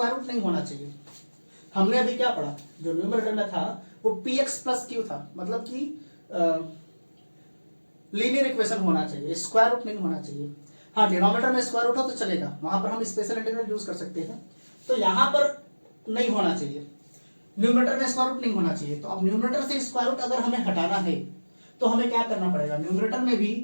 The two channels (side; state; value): both; inverted; correlation -1.00